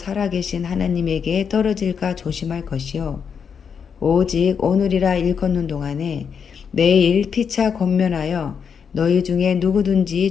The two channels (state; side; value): quieter; right; 6.8 dB